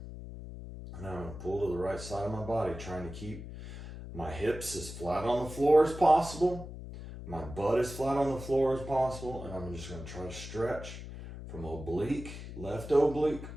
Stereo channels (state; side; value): noise; left; hum, 11 dB below the sound